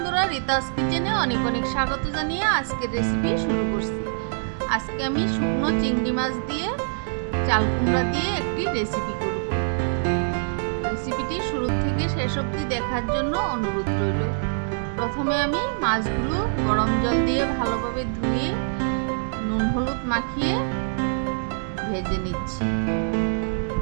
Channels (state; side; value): silent; left; digital silence